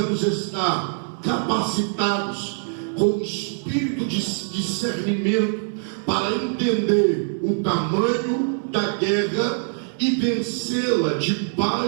estar capacitados com o espírito de discernimento para entender o tamanho da guerra e vencê-la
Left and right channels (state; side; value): silent; left; 63 dB below the other